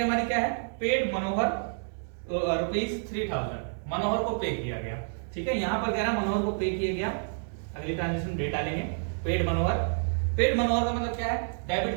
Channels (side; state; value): left; silent; 59 dB below the other